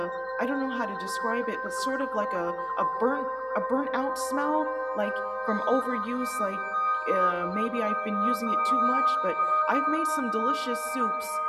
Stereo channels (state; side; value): identical; both; correlation 1.00